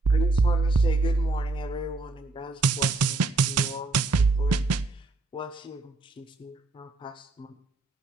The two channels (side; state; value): left; quieter; 3.4 dB